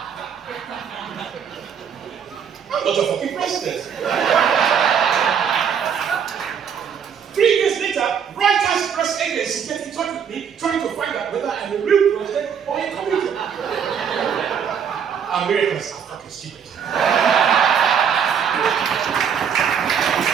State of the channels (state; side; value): quieter; left; 7.5 dB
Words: I'm not a fucking president. 3 years later, Reuters press agency gets in touch with me, trying to find out whether I'm a real president or a comedian. Americans are fucking stupid.